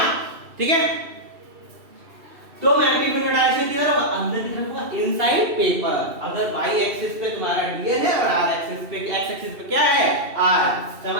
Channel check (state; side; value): late; left; 2.7 ms